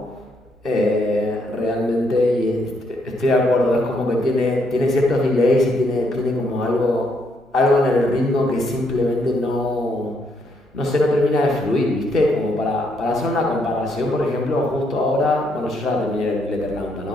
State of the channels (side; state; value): both; normal; correlation 0.74